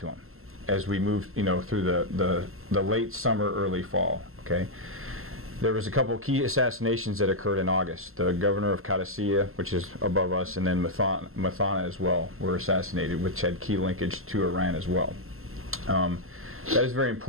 them as we moved, you know, through the late summer, early fall. Okay. There was a couple key assassinations that occurred in August. The governor of Qadisiyah, which is above us, and then Mathana as well, were assassinated, which had key linkage to Iran as well. That is very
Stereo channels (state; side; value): late; left; 0.62 ms